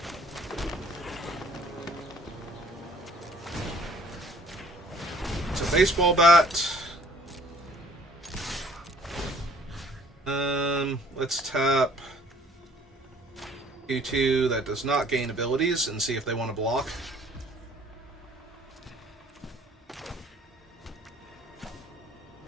It's a baseball bat. Let's tap Q2 that does not gain abilities and see if they want to block.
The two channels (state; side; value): normal; both; correlation 0.57